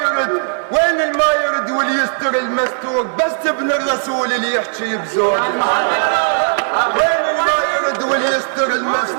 وين الما يرد واللي يستر المستور؟ بس ابن الرسول اللي يحكي بزود. وين الما يرد واللي يستر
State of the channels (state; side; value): silent; left; 58 dB below the other